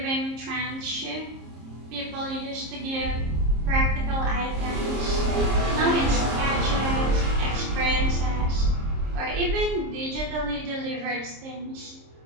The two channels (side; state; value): left; late; 26 ms